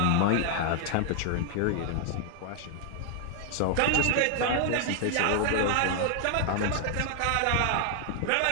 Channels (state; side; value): different; both; correlation 0.00